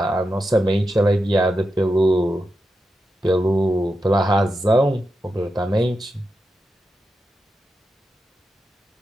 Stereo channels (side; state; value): both; normal; correlation 0.88